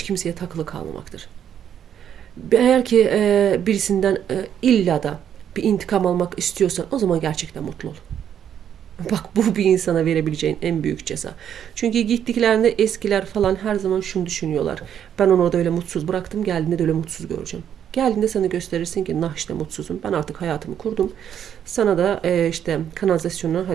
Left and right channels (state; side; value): quieter; left; 9.3 dB